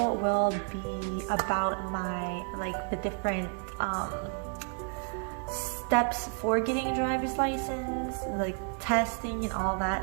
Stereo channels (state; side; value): quieter; left; 37.5 dB